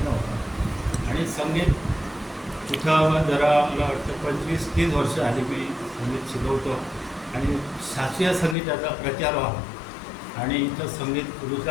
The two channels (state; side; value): drops out; right; at 8.6 s